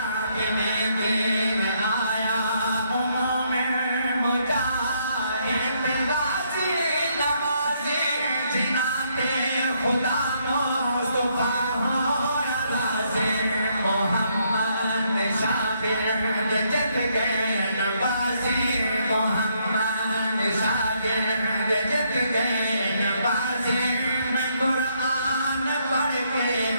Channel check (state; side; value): inverted; both; correlation -0.73